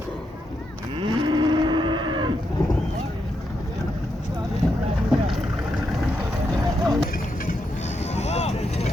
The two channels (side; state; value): both; normal; correlation 0.82